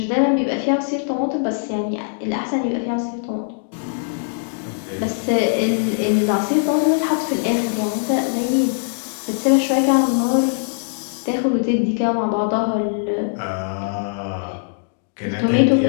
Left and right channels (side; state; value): right; silent; digital silence